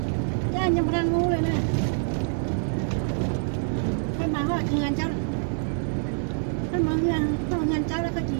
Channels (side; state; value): left; silent; 61 dB below the other